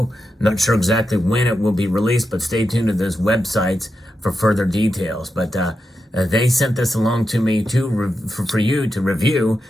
Not sure exactly when it will be released, but stay tuned to those websites for further details. But they sent this along to me for you to review.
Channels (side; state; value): both; normal; correlation 0.88